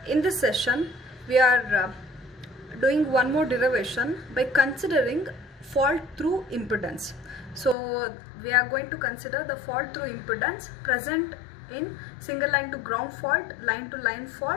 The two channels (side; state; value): right; drops out; at 7.8 s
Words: In this session we are doing one more derivation by considering fault through impedance. So we are going to consider the fault through impedance present in single line to ground fault, line to line